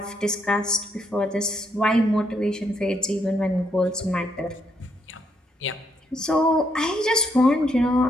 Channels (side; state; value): both; normal; correlation 0.75